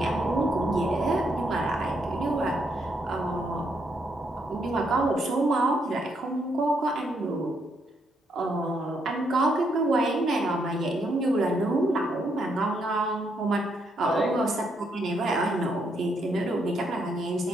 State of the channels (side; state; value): both; normal; correlation 0.75